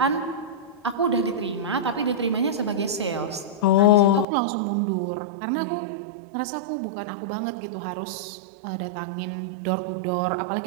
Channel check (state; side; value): drops out; left; at 4.2 s